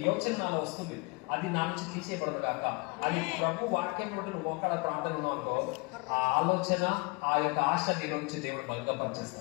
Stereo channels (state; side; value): quieter; right; 28.6 dB